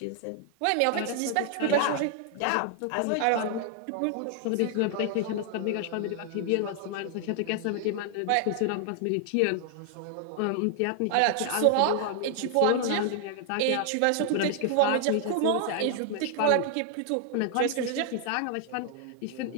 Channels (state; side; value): different; both; correlation 0.00